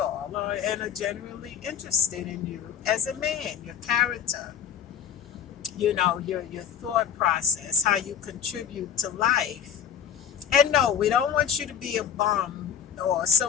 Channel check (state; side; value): quieter; right; 8.6 dB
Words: and are genuinely interested in you as a man, your character, your thought process, how you contribute to life. And no, we don't want you to be a bum or